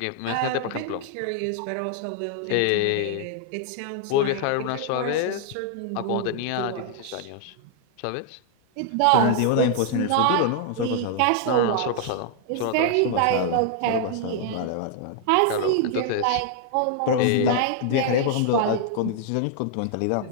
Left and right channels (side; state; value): both; different; correlation -0.01